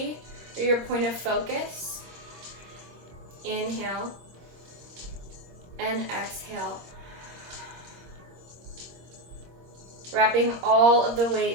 or your point of focus. Inhale and exhale. Wrapping all of the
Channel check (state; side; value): late; left; 25 ms